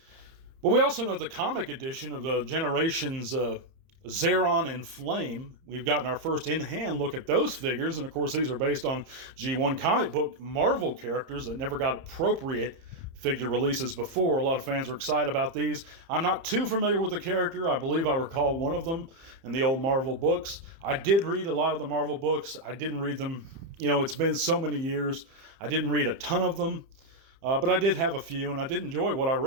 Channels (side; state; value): left; late; 30 ms